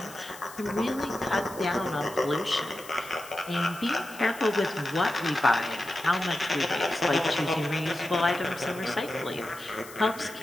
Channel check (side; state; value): left; noise; hiss, 17 dB below the sound